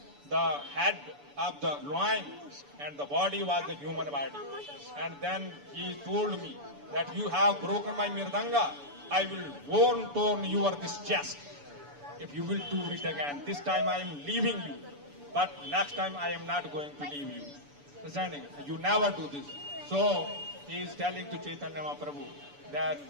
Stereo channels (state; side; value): late; left; 6.9 ms